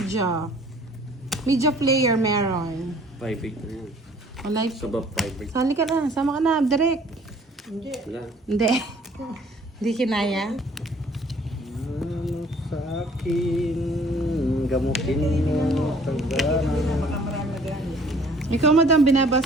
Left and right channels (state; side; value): normal; both; correlation 0.55